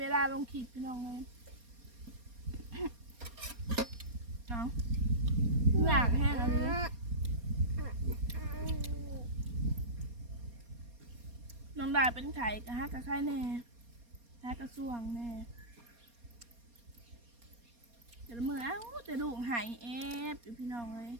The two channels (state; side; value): late; left; 4.2 ms